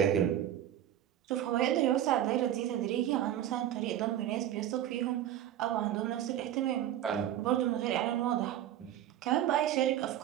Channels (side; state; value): left; quieter; 11.6 dB